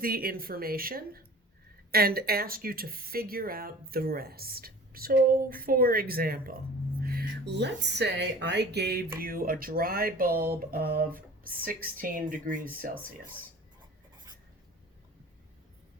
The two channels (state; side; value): normal; both; correlation 0.43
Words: information and ask you to figure out the rest. So, for example, let's say I gave you a dry bulb of 16 degrees Celsius.